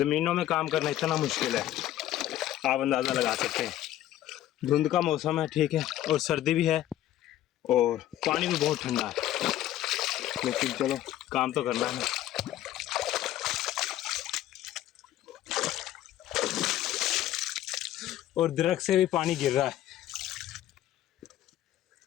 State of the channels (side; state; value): right; quieter; 13.2 dB